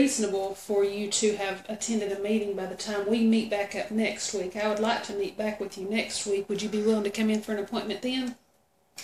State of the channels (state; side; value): identical; both; correlation 1.00